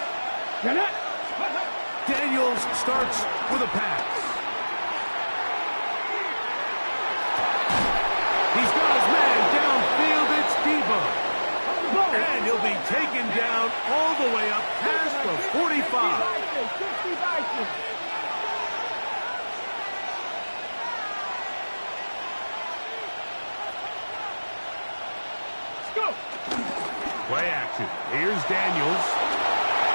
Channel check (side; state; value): both; inverted; correlation -1.00